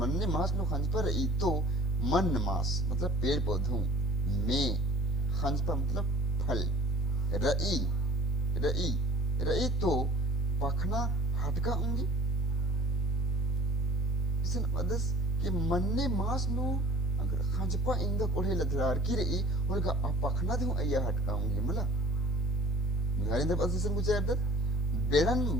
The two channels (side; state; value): both; normal; correlation 0.50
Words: मास नु खंजपर ई तो मन मास मतलब पेड़ पौधों में खंजपर मतलब फल रई रई रई तो पखना हटका होंगे इसन अदस कि मन्ने मास नु अगर खंजपा इंगा कोढ़े लदरार की रई उनका पखना दे अया हटका होंगे मला मिलारी दे पसिसन कुछ अदत बेड़न